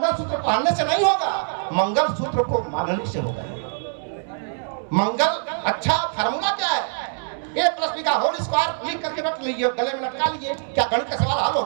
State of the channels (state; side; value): silent; left; 63 dB below the other